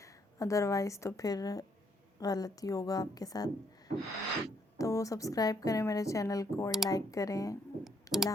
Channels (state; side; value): normal; both; correlation 0.70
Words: अदरवाइज़ तो फिर गलती होगा आपके साथ। तो सब्सक्राइब करें मेरे चैनल को और लाइक करें। अल्लाह